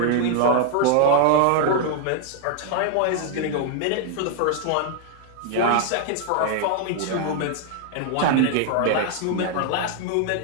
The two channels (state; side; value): different; both; correlation 0.00